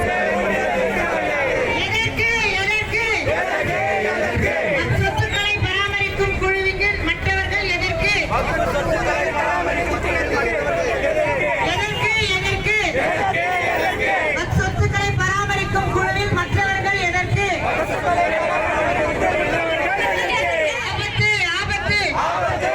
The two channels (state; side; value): identical; both; correlation 1.00